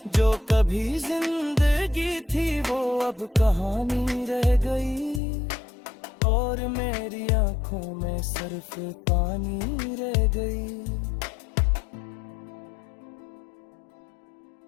जो कभी जिंदगी थी वो अब कहानी रह गई, और मेरी आंखों में सिर्फ पानी रह गई।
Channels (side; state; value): right; drops out; at 5.2 s